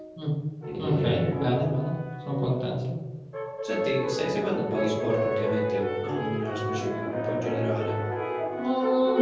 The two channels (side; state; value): both; identical; correlation 1.00